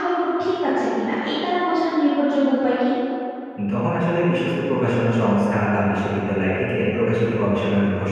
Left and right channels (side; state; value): both; identical; correlation 1.00